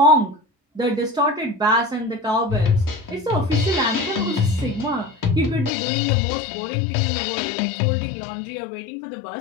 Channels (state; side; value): drops out; right; at 5.7 s